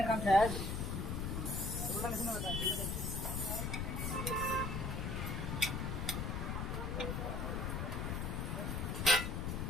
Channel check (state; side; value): noise; left; rumble, 1 dB below the sound